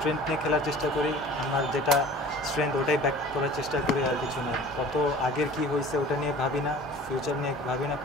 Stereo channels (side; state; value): both; normal; correlation 0.44